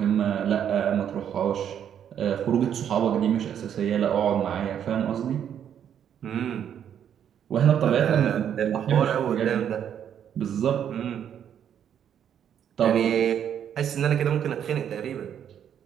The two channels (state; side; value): quieter; left; 9.1 dB